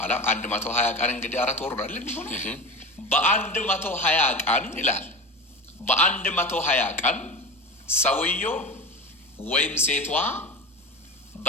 120 ቀን እንግዲህ 4 ወር አይደል የሚሆነው? በ120 ቀን ይላል። በ120 ቀን ሰውየው ወይም ሴቷ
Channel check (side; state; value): both; normal; correlation 0.28